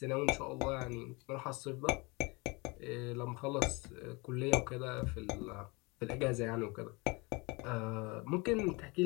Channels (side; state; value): right; quieter; 27.0 dB